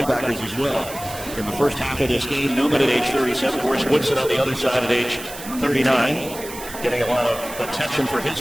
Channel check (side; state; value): right; noise; hiss, 13 dB below the sound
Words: as well. In the first half of this game, Newman at age 37, of course, Woodson on the other side at age 39, getting a lot of attention for his